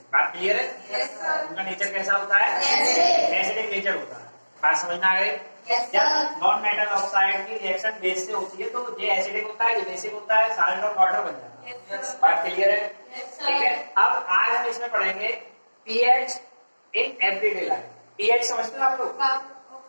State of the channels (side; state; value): both; inverted; correlation -1.00